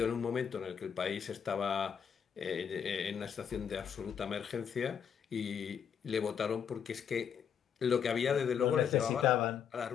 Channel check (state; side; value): quieter; right; 7.7 dB